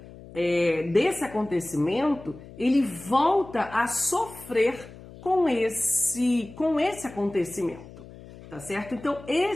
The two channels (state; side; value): noise; left; hum, 18 dB below the sound